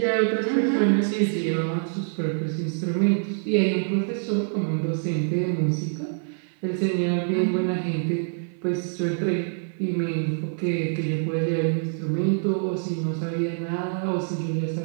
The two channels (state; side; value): silent; left; 61 dB below the other